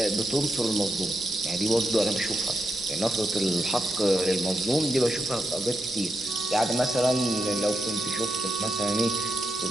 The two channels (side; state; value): both; normal; correlation 0.84